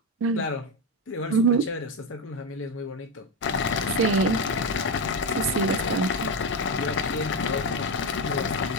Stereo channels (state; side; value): normal; both; correlation 0.11